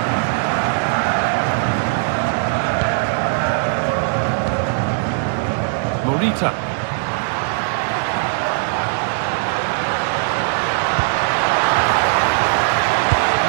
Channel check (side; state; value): left; silent; 66 dB below the other